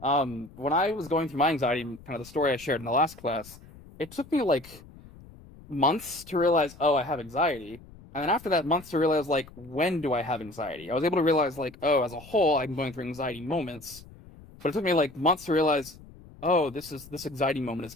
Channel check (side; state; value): left; noise; rumble, 20 dB below the sound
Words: I was going through my anxiety, kind of the story I shared in the last class, it took me like months to realize, oh, I have anxiety. And then after that, months to realize, like, when do I have anxiety? I was able to realize, like, oh, as a whole, I'm going through anxiety moments. But it took me like months to realize, oh, this anxiety moment is